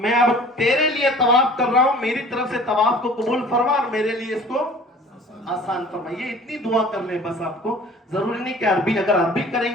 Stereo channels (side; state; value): both; normal; correlation 0.46